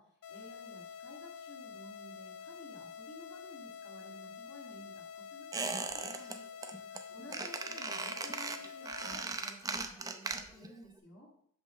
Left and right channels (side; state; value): both; normal; correlation -0.16